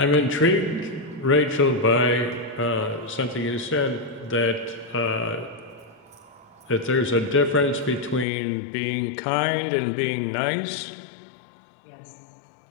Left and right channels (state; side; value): drops out; right; at 8.2 s